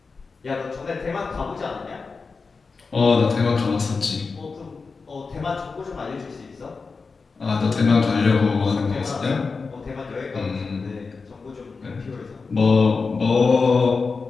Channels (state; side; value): quieter; right; 4.5 dB